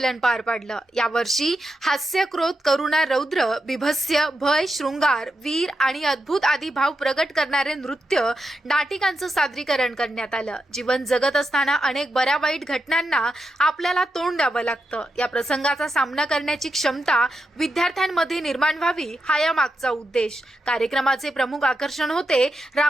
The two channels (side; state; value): both; normal; correlation 0.87